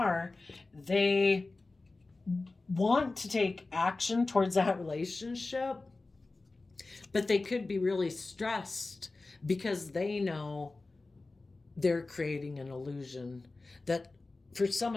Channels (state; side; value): quieter; right; 3.4 dB